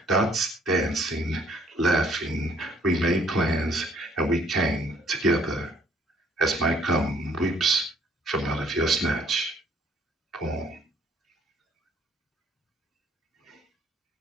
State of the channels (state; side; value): normal; both; correlation 0.62